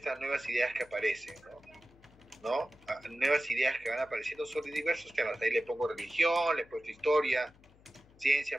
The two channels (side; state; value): left; noise; hum, 27 dB below the sound